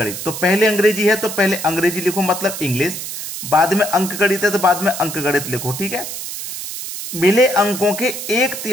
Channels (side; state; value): right; noise; hiss, 7 dB below the sound